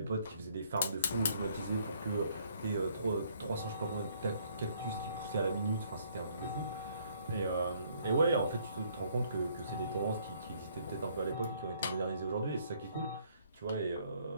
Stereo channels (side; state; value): both; inverted; correlation -0.65